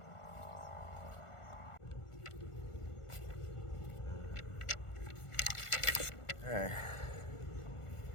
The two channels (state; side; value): late; right; 1.4 ms